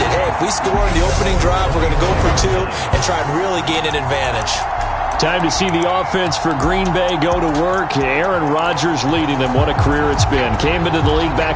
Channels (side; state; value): both; identical; correlation 1.00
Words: Hey, if we score in the opening drive, we're going to go for 2 and try and really gain an advantage. Time to see the offense for Green Bay go to work. Aaron Rodgers leading them. What a career it's been. Came into the league